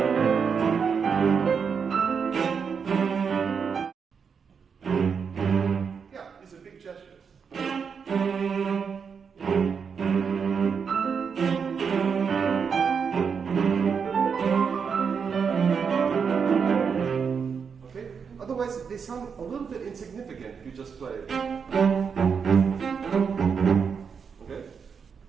They sound a little bit insignificant if you just play it. Okay?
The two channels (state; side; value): quieter; left; 6.3 dB